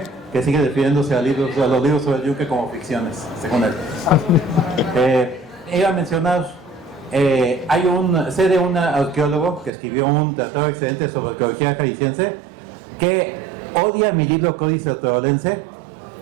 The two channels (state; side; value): drops out; left; at 9.7 s